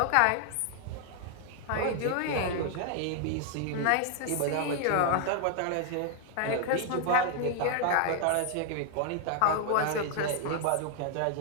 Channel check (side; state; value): both; different; correlation 0.00